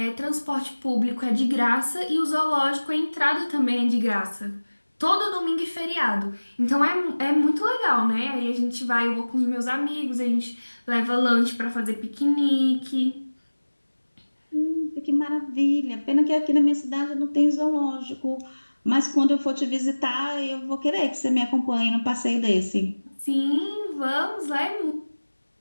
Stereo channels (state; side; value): inverted; both; correlation -1.00